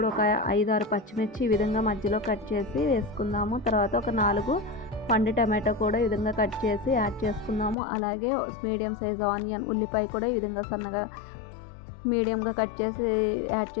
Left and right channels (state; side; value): drops out; right; at 7.8 s